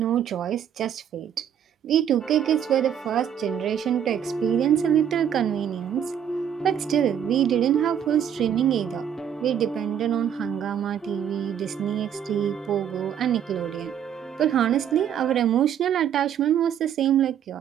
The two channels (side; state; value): left; quieter; 9.0 dB